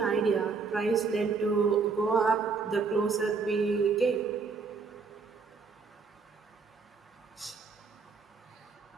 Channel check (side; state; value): left; quieter; 4.8 dB